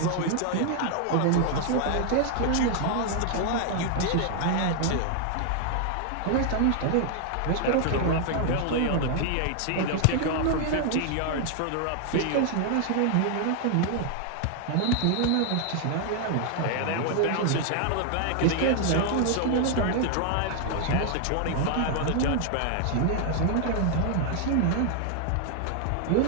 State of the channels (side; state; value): both; different; correlation 0.00